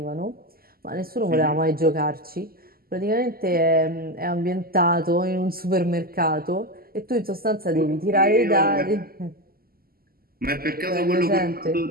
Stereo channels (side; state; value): left; late; 0.43 ms